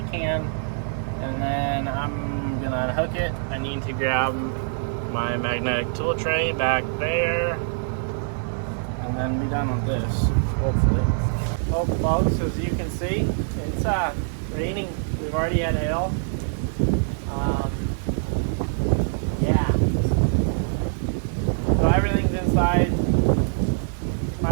can. And then I'm gonna unhook it. I need to grab my magnetic tool tray back there. And then be done with this, hopefully. Oh, folks, as you can see, it's raining. We've already had hail. Yeah. So everything's inside.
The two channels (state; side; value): silent; left; 59 dB below the other